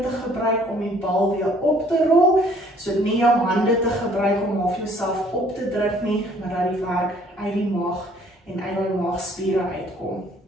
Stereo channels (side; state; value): both; normal; correlation 0.59